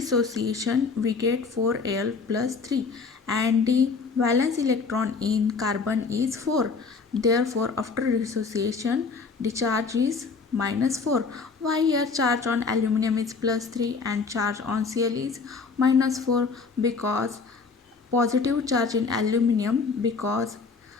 we get 4Al plus 3 and the valence electron in carbon is 4. Therefore after dissociation the charge is -4. Why here charge on aluminium is +3 and charge on Cl is -4? Because positive charge in aluminium, because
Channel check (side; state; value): right; quieter; 4.8 dB